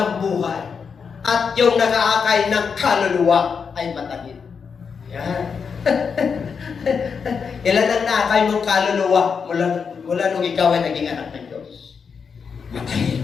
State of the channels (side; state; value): right; quieter; 6.0 dB